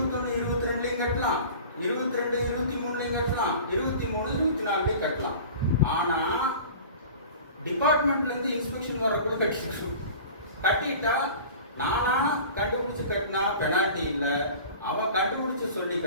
22லையும் கட்டலாம், 22 23லையும் கட்டலாம், 23 24லையும் கட்டலாம். ஆனா டிபார்ட்மெண்ட்ல இருந்து இன்ஸ்பெக்ஷன் வரக்குள்ள கட்டிட்டா நானா கண்டுபிடிச்சு கட்டினா பெனால்ட்டி இல்ல, அவன் கண்டுபிடிச்சு சொல்லி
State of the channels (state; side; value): inverted; both; correlation -0.40